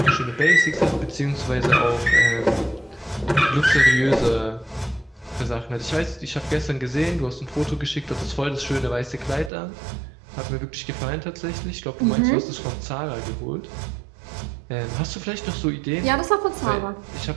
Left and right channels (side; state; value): left; drops out; at 9.5 s